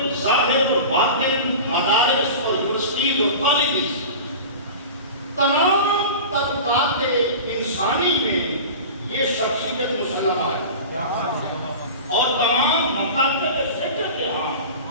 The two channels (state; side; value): inverted; both; correlation -0.33